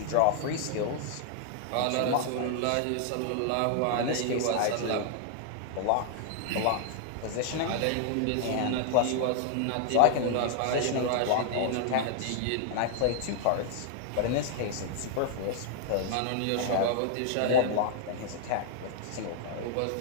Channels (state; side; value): different; both; correlation -0.01